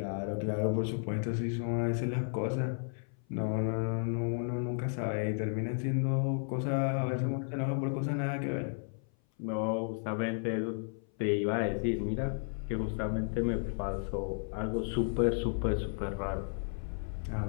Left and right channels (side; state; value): right; silent; 55 dB below the other